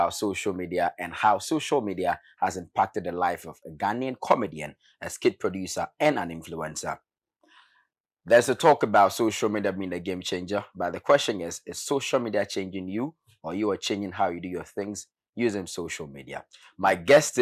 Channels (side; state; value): both; identical; correlation 1.00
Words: social media and how social media has impacted the life of a Ghanaian comedian, a skit producer, and an influencer. There's a talk about social media being a game changer, but the question is social media changing you, or you are changing how you do your things using social media? My guest